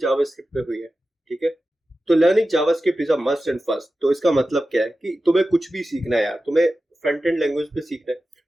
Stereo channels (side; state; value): both; normal; correlation 0.93